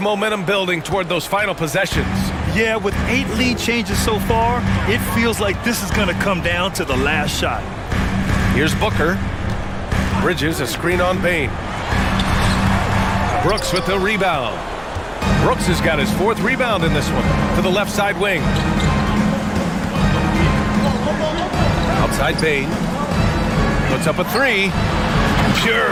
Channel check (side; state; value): both; identical; correlation 1.00